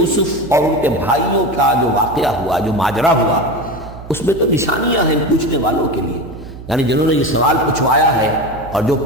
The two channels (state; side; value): noise; right; hum, 14 dB below the sound